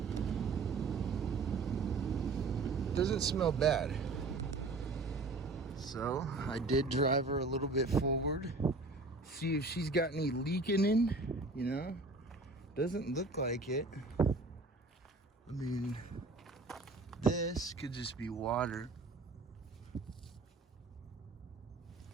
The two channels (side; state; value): left; quieter; 3.4 dB